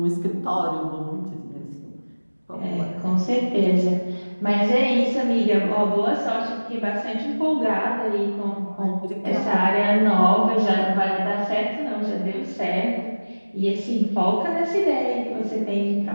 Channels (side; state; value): both; inverted; correlation -1.00